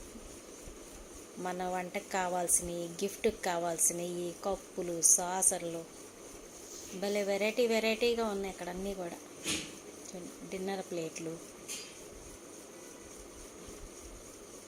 మన వంటకు కావాల్సినవి, గిఫ్ట్కి కావాల్సినవి, కప్పులు, సాసర్లు, భలే వెరైటీగా ఉన్నాయి అక్కడ అన్నీ కూడా. డిన్నర్ ప్లేట్లు,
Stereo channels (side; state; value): both; identical; correlation 1.00